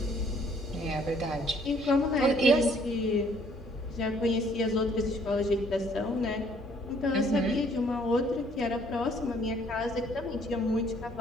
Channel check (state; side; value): normal; both; correlation 0.62